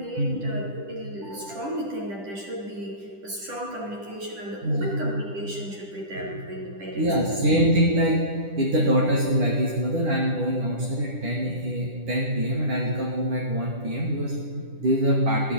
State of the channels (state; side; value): late; left; 10 ms